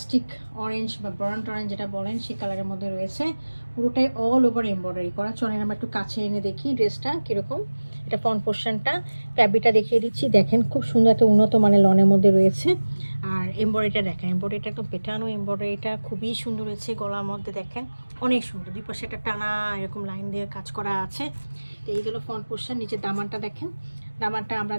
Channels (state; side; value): inverted; both; correlation -1.00